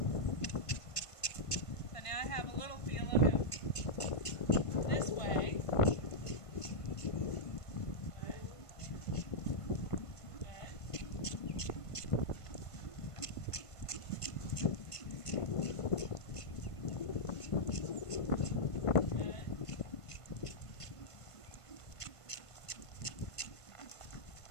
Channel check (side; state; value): right; late; 1.5 ms